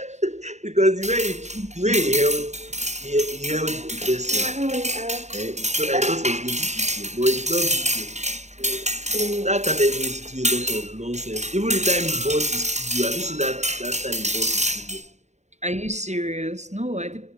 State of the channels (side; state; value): left; late; 0.33 ms